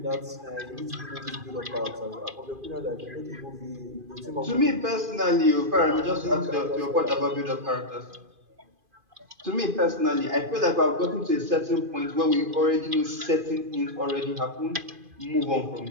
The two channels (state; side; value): late; left; 2.5 ms